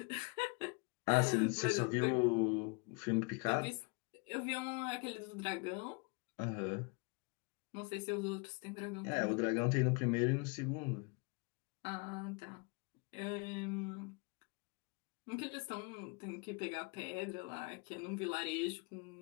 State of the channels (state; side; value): quieter; right; 30.9 dB